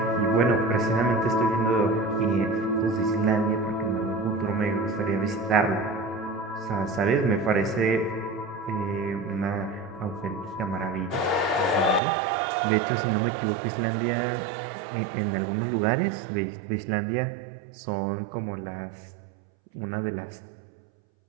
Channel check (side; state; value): left; drops out; at 12.0 s